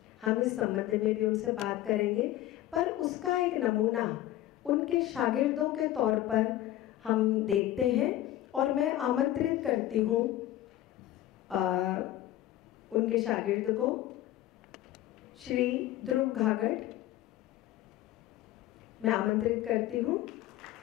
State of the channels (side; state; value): right; quieter; 14.2 dB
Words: हम इस संबंध में भी उनसे बात करेंगे, पर उसका एक नमूना उनके शागिर्दों के तौर पर हम देखते हैं और मैं आमंत्रित करती हूँ उनके शागिर्द को, श्री ध्रुव घागट। मैं आमंत्रित करती हूँ।